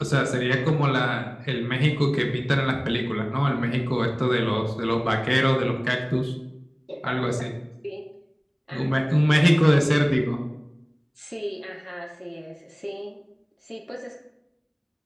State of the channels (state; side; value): identical; both; correlation 1.00